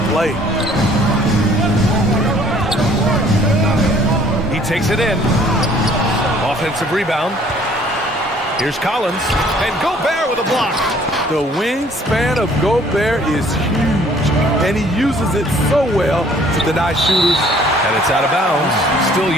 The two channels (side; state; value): both; normal; correlation 0.57